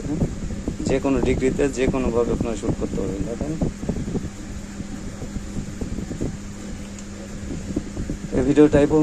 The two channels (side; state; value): both; identical; correlation 1.00